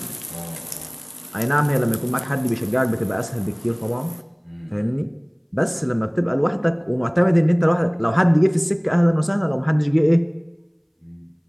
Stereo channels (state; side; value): identical; both; correlation 1.00